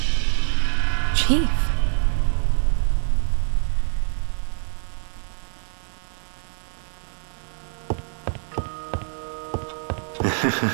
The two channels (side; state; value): left; silent; digital silence